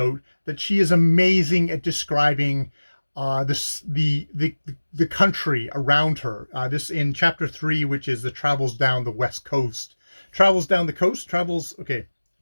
that she is amazing at describing the country around her. This in chapter 3, which is the travels down the west coast, travels down the coast, travels. Okay,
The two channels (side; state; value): both; inverted; correlation -1.00